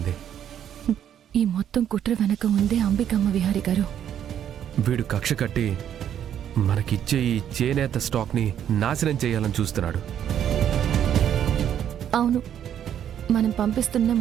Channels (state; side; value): quieter; left; 9.8 dB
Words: ఈ మొత్తం కుట్ర వెనక ఉందే అంబికమ్మ విహారి గారు. వీడు కక్ష కట్టి మనకిచ్చే ఈ చేనేత స్టాక్ని నాశనం చేయాలని చూస్తున్నాడు. అవును, మనం పంపిస్తున్న